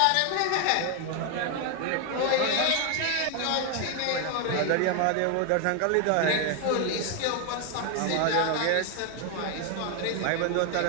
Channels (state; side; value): different; both; correlation 0.01